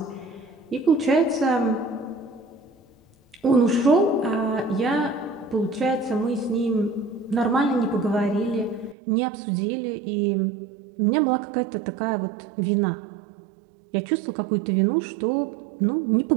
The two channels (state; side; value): drops out; left; at 9.0 s